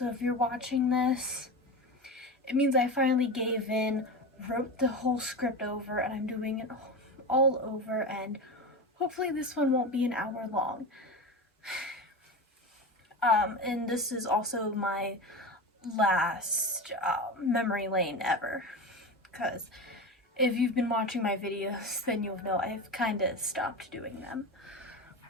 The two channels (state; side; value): normal; both; correlation 0.24